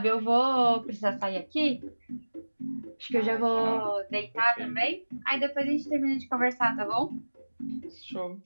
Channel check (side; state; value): both; inverted; correlation -1.00